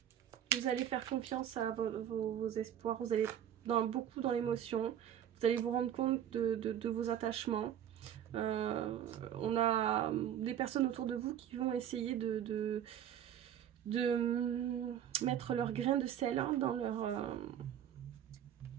Vous allez faire confiance à vos espoirs. Vous allez beaucoup dans l'émotion. Vous allez vous rendre compte de vos attachements. On a des personnes autour de vous qui vont essayer de mettre leur grain de sel hein, dans leur...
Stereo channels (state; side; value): quieter; left; 10.0 dB